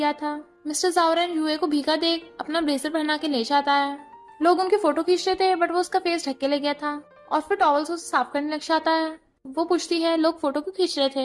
था। मिस्टर जावरन यूए को भीगा देख अपना ब्लेजर पहना के ले जाता है। लोग उनकी फोटो खींच रहे थे, बट वो उसका फेस ढक के ले गया था और फिर टॉवल से उसे साफ करने लग जाता है। वो पूछती है, लोग फोटो क्यों खींच रहे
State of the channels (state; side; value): identical; both; correlation 1.00